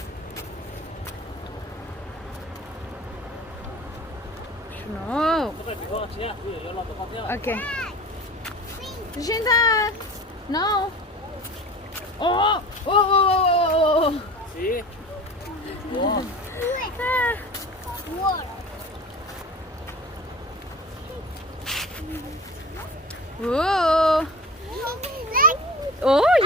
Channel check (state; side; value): normal; both; correlation 0.36